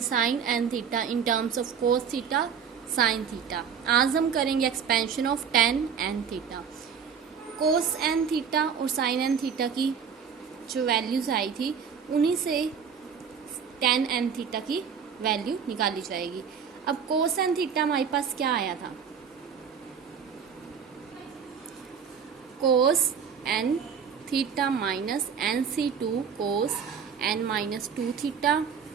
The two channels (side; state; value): left; quieter; 6.9 dB